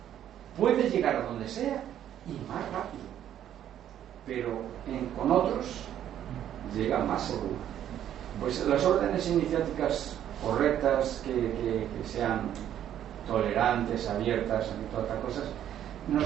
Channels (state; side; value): quieter; left; 10.7 dB